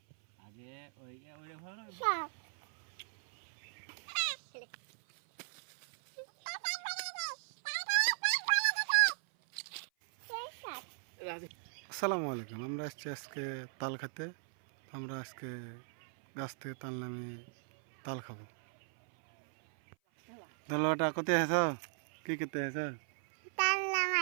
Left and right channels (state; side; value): silent; left; 53 dB below the other